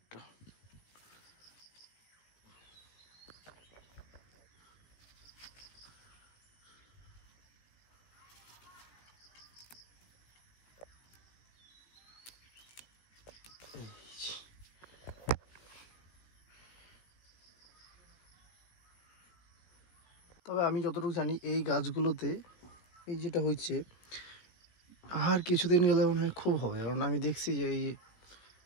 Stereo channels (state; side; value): late; right; 17 ms